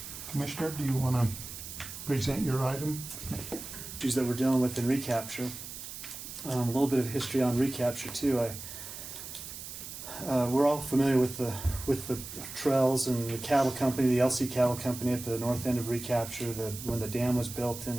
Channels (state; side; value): noise; right; hiss, 10 dB below the sound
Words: Commissioner, do you want to present your item? Issues that we're dealing with in Recapture. A little bit of history on Recapture too. We're all familiar with the trails and the cattle company, the LC Cattle Company at the north end of Recapture. When the dam was built,